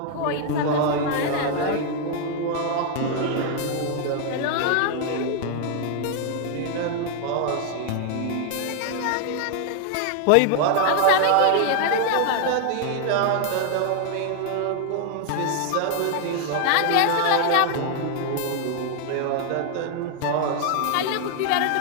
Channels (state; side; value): different; both; correlation 0.00